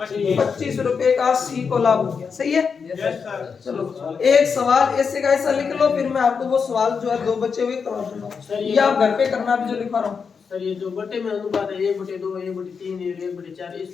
25 रुपए का सी को लाभ हो गया। सही है? चलो एक सवाल ऐसे का ऐसा लिख लो, फिर मैं आपको वो सवाल जो है 2 बचे हुए करवा दूंगा, ये आप घर पे करना भी जो लिखा रहा हूँ। सर ये जो बटे में अनुपात है 1/2 1/3 1/4,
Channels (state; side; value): quieter; right; 5.8 dB